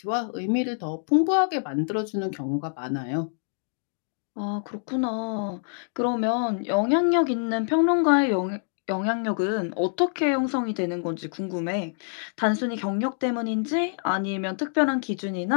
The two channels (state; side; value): silent; right; digital silence